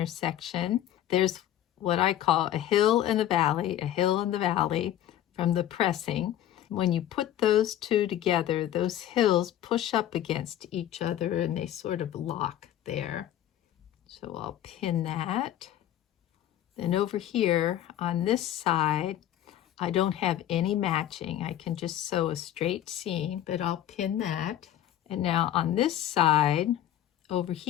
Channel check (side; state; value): right; quieter; 12.0 dB